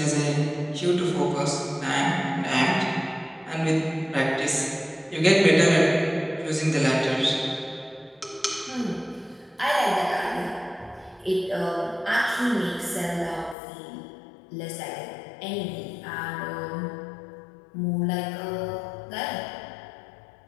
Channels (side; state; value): right; drops out; at 13.6 s